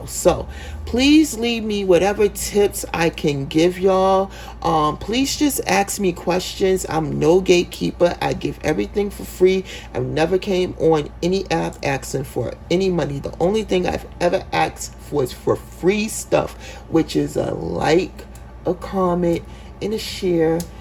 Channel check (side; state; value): both; identical; correlation 1.00